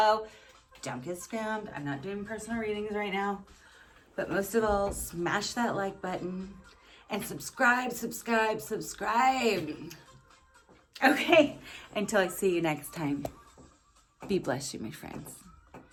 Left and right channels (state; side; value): identical; both; correlation 1.00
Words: Don't get scammed. I'm not doing personal readings right now. But most of all, smash that like button and subscribe. Okay, until I see you next time. Be blessed, you my friends.